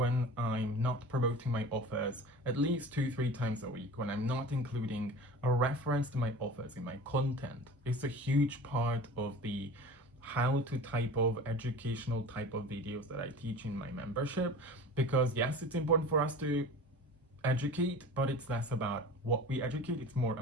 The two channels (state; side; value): normal; both; correlation 0.37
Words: I'm not promoting my offers at least 2-3 times a week, when I'm not including a reference to my offers in my content? It's a huge part of the how to type of educational type of videos that I teach in my membership, because yes, it's important for us to educate, but it's less about what we educate, it's more